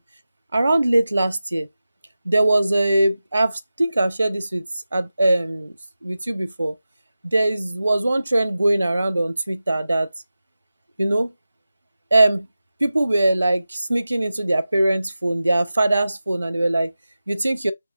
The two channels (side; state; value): both; inverted; correlation -0.94